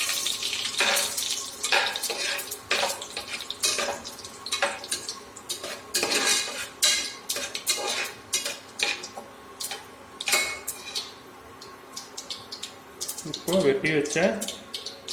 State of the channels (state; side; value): identical; both; correlation 1.00